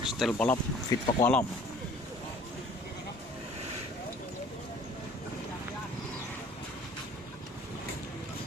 Style balap fit pakualam.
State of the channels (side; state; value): both; normal; correlation 0.52